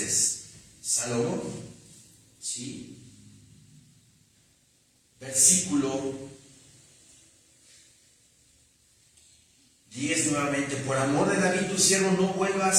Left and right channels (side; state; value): both; identical; correlation 1.00